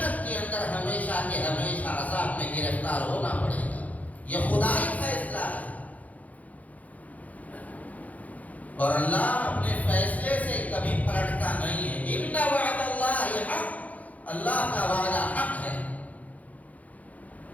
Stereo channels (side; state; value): right; late; 0.074 ms